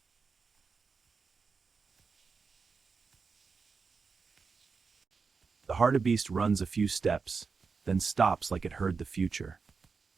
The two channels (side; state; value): left; quieter; 5.0 dB